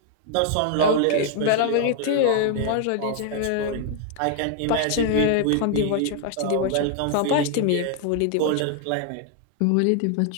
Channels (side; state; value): both; different; correlation 0.00